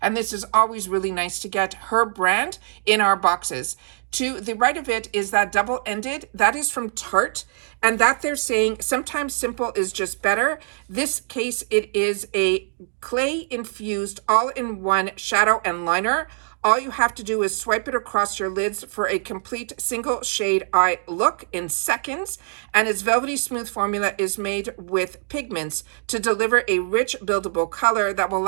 and this is always really nice to get her brand in our boxes. To the right of it is that double-ended. That is from Tarte, and that they're saying sometimes simple is just better. This case, it is a clay-infused all-in-one shadow and liner. All you have to do is swipe it across your lids for a complete single shade eye look in seconds. And its velvety smooth formula is made with pigments to deliver a rich buildable color that will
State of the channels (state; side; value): silent; left; digital silence